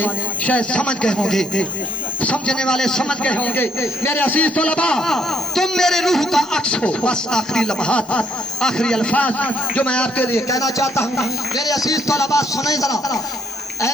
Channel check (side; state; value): both; normal; correlation 0.68